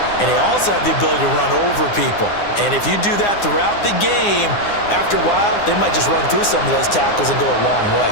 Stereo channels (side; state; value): right; late; 9.8 ms